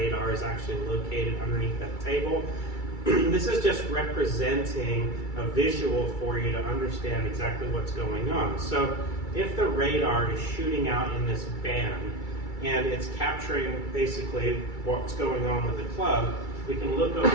is actually located underneath that table, this is just representing a visual for you to understand exactly what's going on. So if the radar is shooting out in this band and it's capturing basically what's going on with the club, we can look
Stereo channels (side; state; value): right; late; 2.3 ms